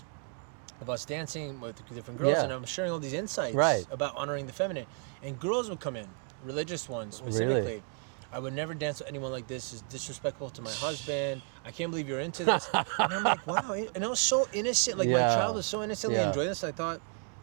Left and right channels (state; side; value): quieter; left; 39.7 dB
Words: of us dancing with different girls, Yeah. and I'm sharing all these insights Right. about honoring the feminine. And girls would come in, religious ones specifically. Really? I would never dance with anyone like this. It's disrespectful to my husband. I can't believe you're into this. And I'm like, wow. And I was so innocent. Like my Yeah. child was so innocently Yeah. enjoying this. I thought,